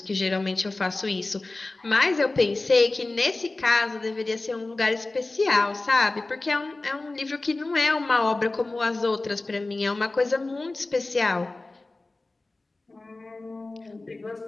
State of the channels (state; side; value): quieter; right; 3.1 dB